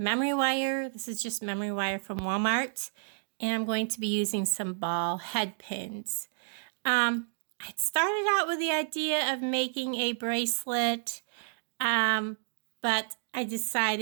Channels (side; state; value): left; silent; digital silence